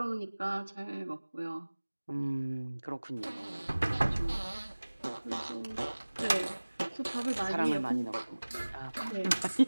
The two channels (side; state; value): both; inverted; correlation -1.00